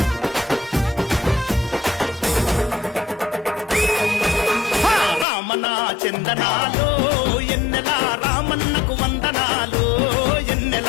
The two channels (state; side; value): drops out; right; at 5.2 s